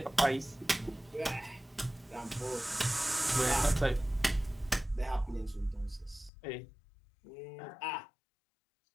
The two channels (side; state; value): right; drops out; at 6.3 s